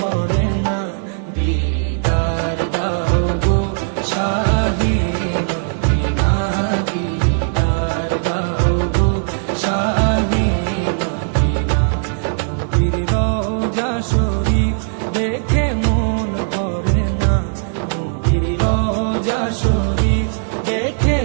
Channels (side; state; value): left; silent; 67 dB below the other